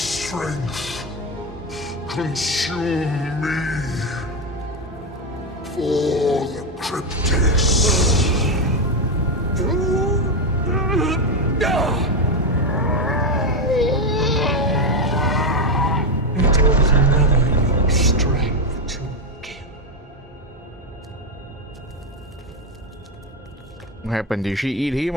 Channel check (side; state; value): both; normal; correlation 0.09